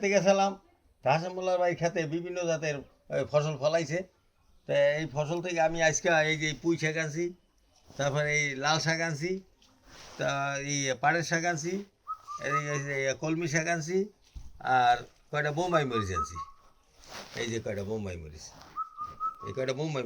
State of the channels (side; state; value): both; identical; correlation 1.00